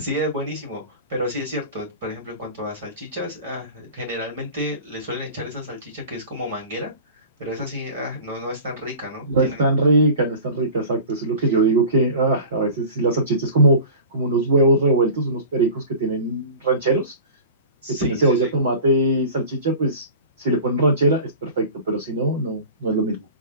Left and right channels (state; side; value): inverted; both; correlation -0.38